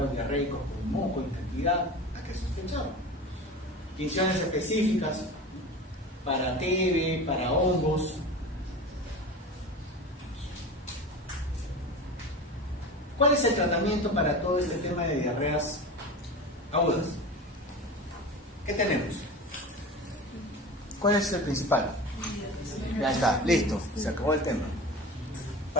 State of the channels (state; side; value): normal; both; correlation 0.32